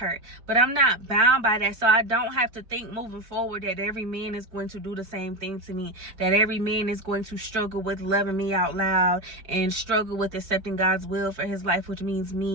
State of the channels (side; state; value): left; late; 4.7 ms